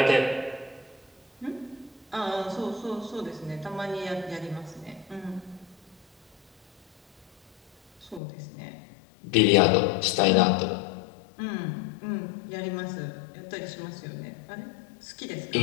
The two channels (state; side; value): drops out; right; at 8.2 s